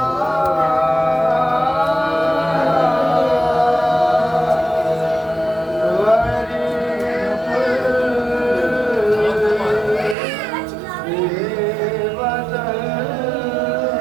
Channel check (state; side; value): drops out; left; at 10.2 s